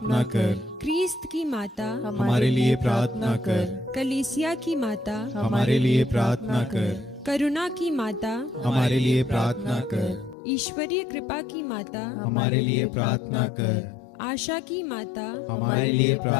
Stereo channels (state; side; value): drops out; right; at 10.4 s